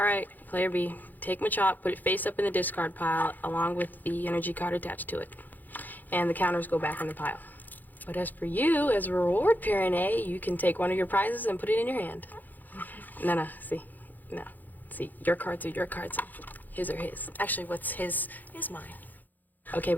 player B, take Machop, put it face up in the discard pile along with the energy card attached to it. And the counters go back in the pile. But as for you, as a reward, Parent A, you can take one of your prizes and put it in your hand. No, see. No. See, your cards are your cards. His are his. Actually, what's his is mine. Okay,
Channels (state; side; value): late; right; 0.085 ms